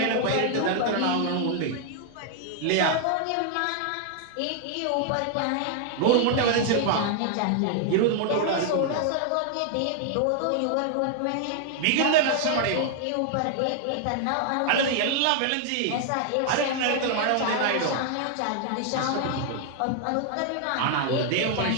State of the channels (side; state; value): both; different; correlation 0.00